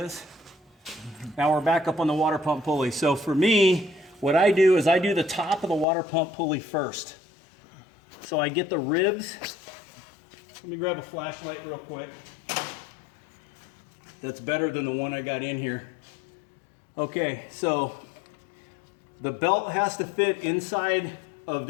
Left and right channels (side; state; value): right; drops out; at 5.9 s